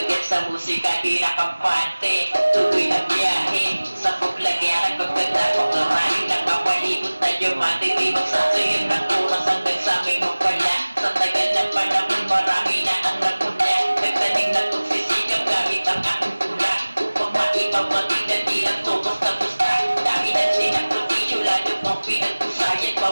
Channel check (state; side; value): inverted; both; correlation -1.00